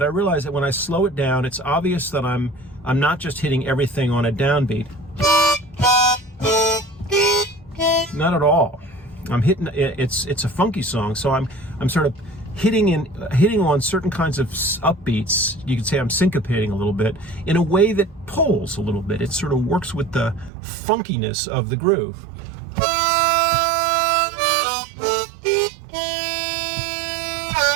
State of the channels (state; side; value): drops out; left; at 20.5 s